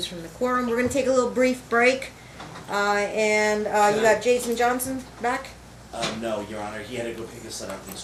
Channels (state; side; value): identical; both; correlation 1.00